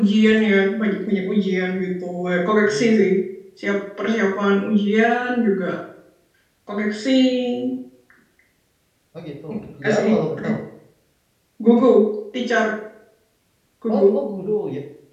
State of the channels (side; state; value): both; identical; correlation 1.00